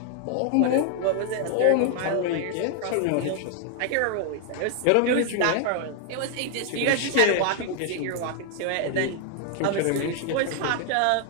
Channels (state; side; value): different; both; correlation 0.00